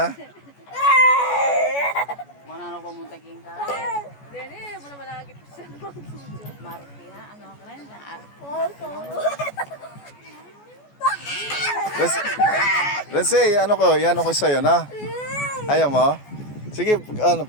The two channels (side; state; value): right; late; 14 ms